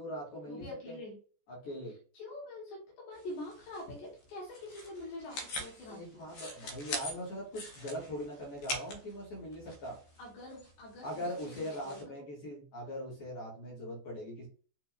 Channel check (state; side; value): late; right; 14 ms